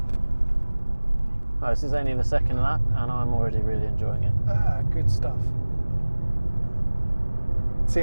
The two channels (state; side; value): inverted; both; correlation -1.00